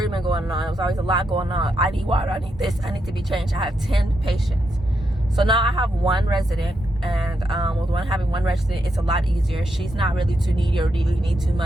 going on. It was always a lot going on. I need water, I need this, I need to be changed. I have 10 patients. So now I have one resident, and with having one resident, it's a lot easier. She's not really too needy or really need too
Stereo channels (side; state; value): both; normal; correlation 0.82